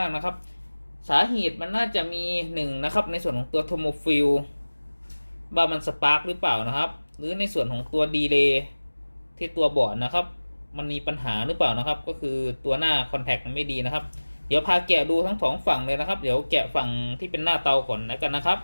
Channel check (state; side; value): inverted; both; correlation -1.00